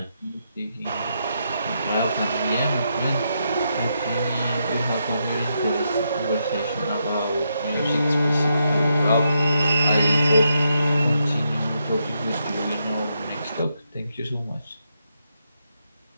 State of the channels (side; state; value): both; inverted; correlation -0.81